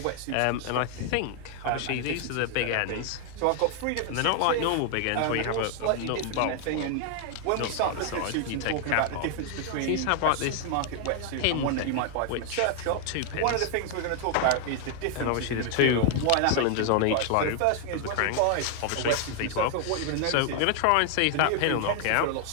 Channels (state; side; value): different; both; correlation 0.00